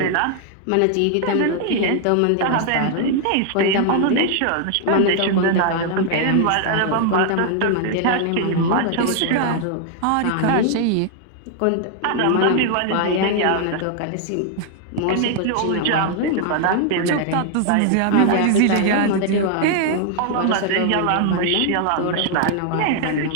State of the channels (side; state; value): both; different; correlation 0.00